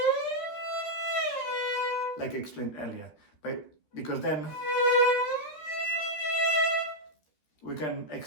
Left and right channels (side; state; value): right; late; 13 ms